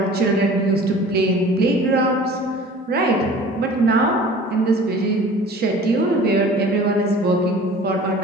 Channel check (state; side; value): normal; both; correlation 0.44